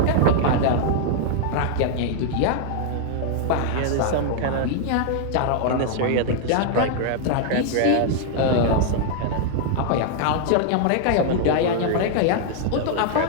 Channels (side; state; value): both; different; correlation -0.01